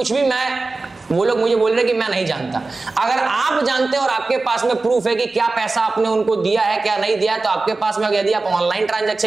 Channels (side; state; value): left; quieter; 3.5 dB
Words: भी वो लोग मुझे बोल रहे कि मैं नहीं जानता। अगर आप जानते हैं और आपके पास में प्रूफ है कि क्या पैसा आपने उनको दिया है, क्या नहीं दिया है, तो आपके पास में, यदि आप ऑनलाइन